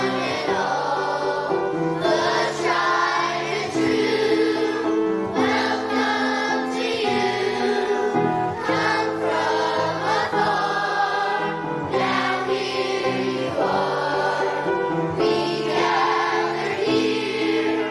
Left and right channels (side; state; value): both; identical; correlation 1.00